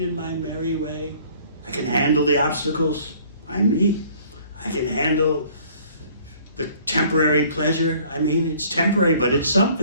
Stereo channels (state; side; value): inverted; both; correlation -0.55